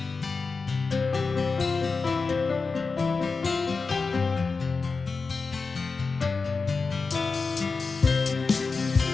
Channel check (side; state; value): right; quieter; 4.4 dB